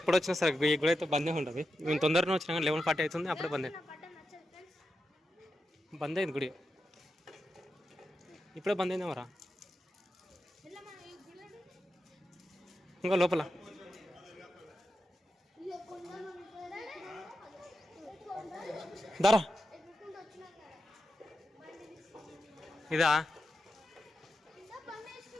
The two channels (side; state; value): both; normal; correlation 0.88